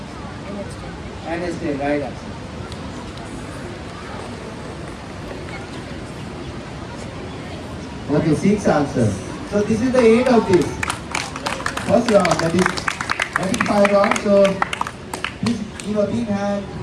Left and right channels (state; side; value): identical; both; correlation 1.00